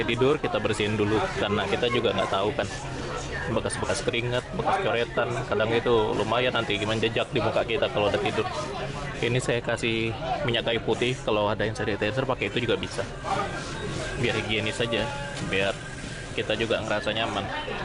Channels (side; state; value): both; identical; correlation 1.00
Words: tidur kita bersihin dulu karena kita juga nggak tahu kan, bekas-bekas keringat, bekas coretan, kadang itu lumayan nanti menjejak di muka kita kalau udah tidur. Ini saya kasih minyak kayu putih, kalau ada yang sanitizer pakai itu juga bisa, biar higienis saja, biar kita juga ngerasa nyaman.